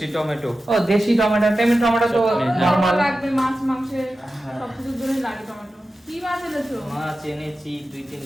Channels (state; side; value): normal; both; correlation 0.93